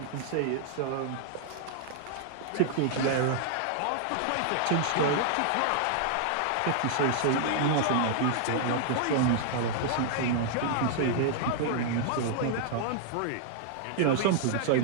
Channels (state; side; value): different; both; correlation -0.01